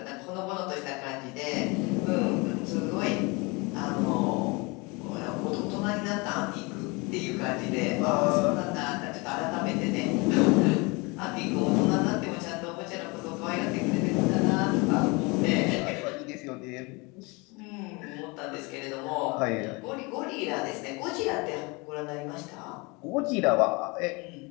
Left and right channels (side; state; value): right; quieter; 27.3 dB